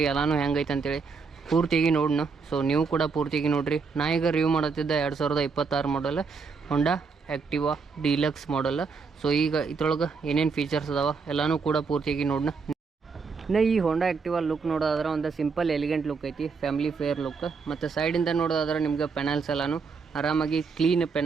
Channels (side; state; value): left; quieter; 5.0 dB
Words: ಎಲ್ಲನೂ ಹೆಂಗೈತೆ ಅಂತೇಳಿ ಪೂರ್ತಿಯಾಗಿ ನೋಡೋಣ. ಸೊ ನೀವು ಕೂಡ ಪೂರ್ತಿಯಾಗಿ ನೋಡಿರಿ. ನಾ ಈಗ ರಿವ್ಯೂ ಮಾಡುತ್ತಿದ್ದ 2026 ಮಾಡಲ್ ಹೋಂಡಾ ಆ್ಯಕ್ಟಿವಾ ಡೀಲಕ್ಸ್ ಮಾಡಲ್. ಸೊ ಈಗ ಇದ್ರೊಳಗೆ ಏನೇನು ಫೀಚರ್ಸ್ ಅದಾವೆ ಎಲ್ಲನೂ ಕೂಡ ಪೂರ್ತಿಯಾಗಿ ನೋಡೋಣ. ಇನ್ನು ಈ ಹೋಂಡಾ ಆ್ಯಕ್ಟಿವಾ ಲುಕ್ ನೋಡೋದಾದ್ರೆ ಒಂದು ಸಿಂಪಲ್ ಎಲಿಗೆಂಟ್ ಲುಕ್ ಐತಿ, ಫ್ಯಾಮಿಲಿ ಫೇರ್ ಲುಕ್. ಮತ್ತು ಸೈಡಿಂದ ನೋಡೋದಾದ್ರೆ ನಿಮ್ಗೆ ಪೆನಲ್ಸ್ ಎಲ್ಲನೂ ಆರಾಮಾಗಿ ಕ್ಲೀನ್